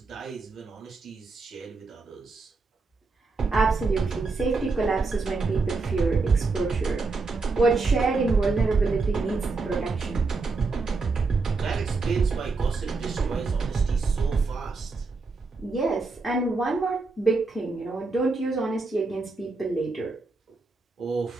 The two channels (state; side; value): quieter; left; 3.9 dB